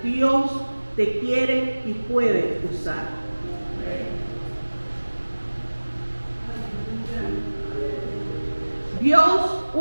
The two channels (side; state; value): both; inverted; correlation -1.00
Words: Dios te quiere y puede usar. Dios